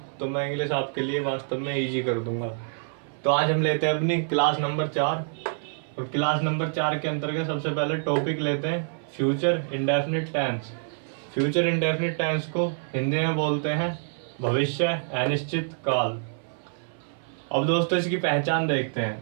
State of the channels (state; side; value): silent; left; 60 dB below the other